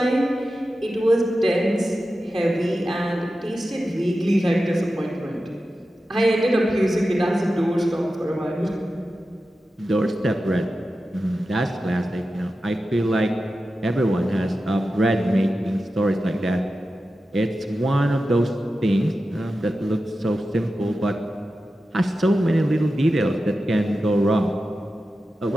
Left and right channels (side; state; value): both; normal; correlation 0.92